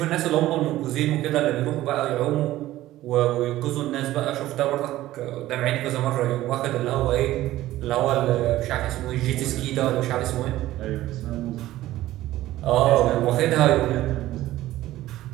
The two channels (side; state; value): left; quieter; 15.3 dB